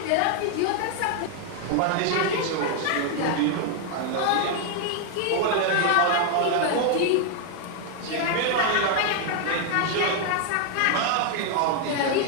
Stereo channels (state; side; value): different; both; correlation 0.00